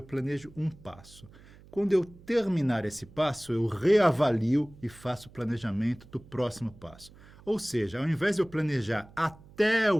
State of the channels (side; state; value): right; noise; hum, 23 dB below the sound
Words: planejo um passo. Quando eu terminar esse passo, eu reavalio e faço o planejamento do próximo passo. Ou seja, ao invés de eu planejar até o